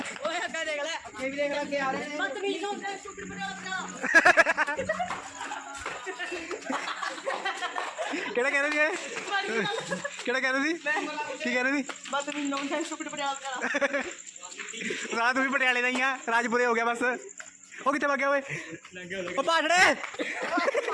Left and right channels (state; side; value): identical; both; correlation 1.00